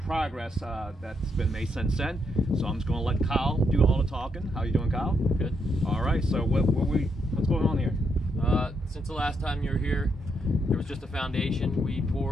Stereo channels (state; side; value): normal; both; correlation 0.78